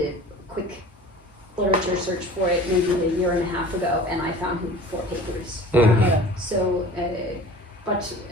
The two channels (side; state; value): both; normal; correlation 0.43